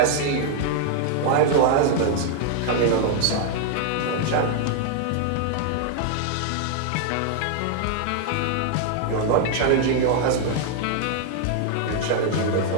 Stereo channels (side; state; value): both; different; correlation 0.00